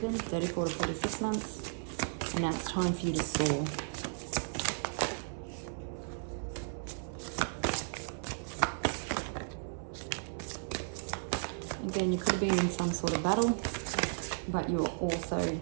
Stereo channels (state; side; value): silent; left; 55 dB below the other